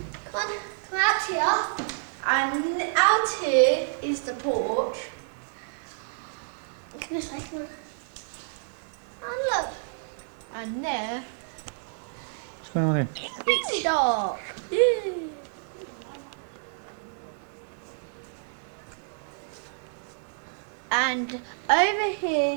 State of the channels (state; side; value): silent; left; digital silence